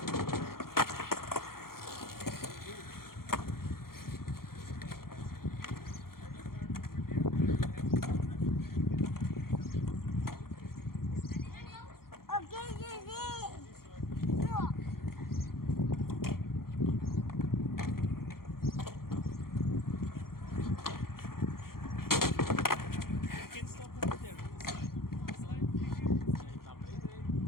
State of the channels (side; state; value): right; late; 0.93 ms